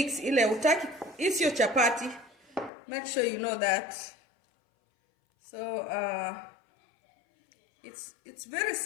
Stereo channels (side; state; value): right; drops out; at 2.7 s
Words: ile utaki. It's your chapati. Make sure you know that. So it's very